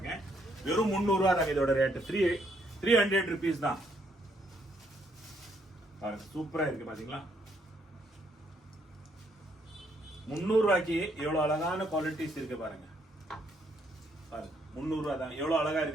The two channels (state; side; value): normal; both; correlation 0.72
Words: வெறும் 300 ரூபாய் தான் இதோட ரேட். 300 rupees தான் பாருங்க. சூப்பரா இருக்கு பாத்தீங்களா. 300 ரூபாய்க்கு எவ்வளவு அழகான குவாலிட்டிஸ் இருக்கு பாருங்க. பாருங்க 300 ரூபாய் தான், எவ்வளவு அழகா